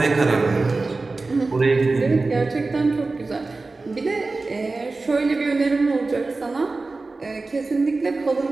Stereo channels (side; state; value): left; quieter; 3.6 dB